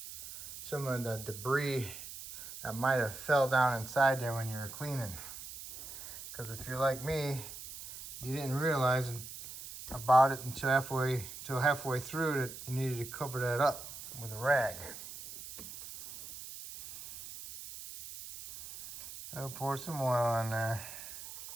some of the debris that might have fell down inside there when you were cleaning. Because if you're like me, you didn't realize about it until halfway through that you needed to cover that up with a rag. I'll pour some oil on there.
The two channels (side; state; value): right; noise; hiss, 12 dB below the sound